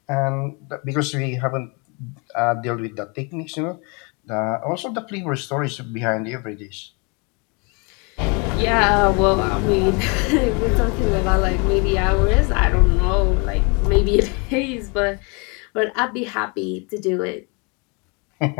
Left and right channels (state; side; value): quieter; right; 31.9 dB